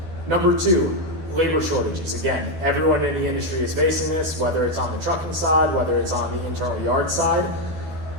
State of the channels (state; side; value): late; left; 12 ms